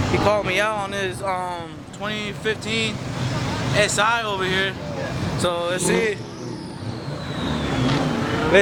He called me out on his 2015 SI over here. So let's see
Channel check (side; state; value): both; identical; correlation 1.00